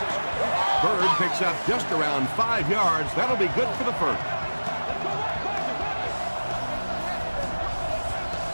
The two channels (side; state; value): both; inverted; correlation -1.00